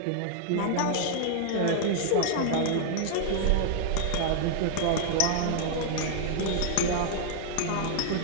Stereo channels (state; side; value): different; both; correlation -0.01